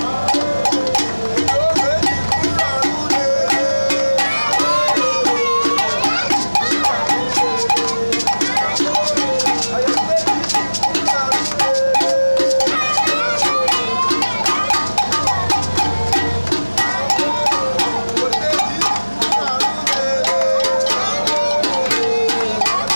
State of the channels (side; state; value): both; inverted; correlation -1.00